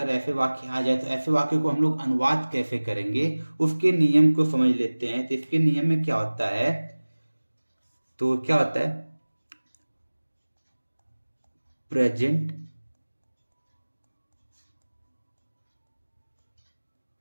ऐसे वाक्य आ जाए तो ऐसे वाक्य को हम लोग अनुवाद कैसे करेंगे उसके नियम को समझ लेते हैं। तो इसके नियम में क्या होता है, तो क्या होता है, प्रेजेंट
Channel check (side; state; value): both; inverted; correlation -1.00